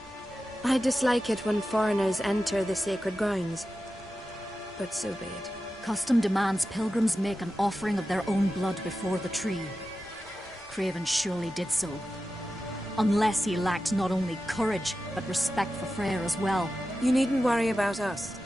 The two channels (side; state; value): both; normal; correlation 0.92